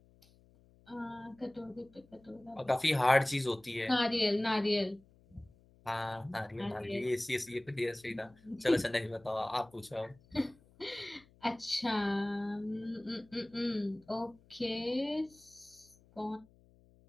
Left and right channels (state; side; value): noise; left; hum, 28 dB below the sound